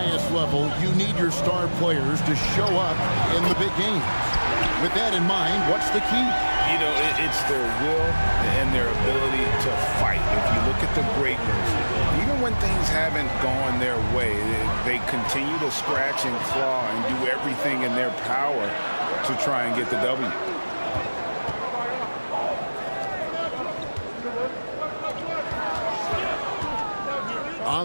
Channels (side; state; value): both; inverted; correlation -1.00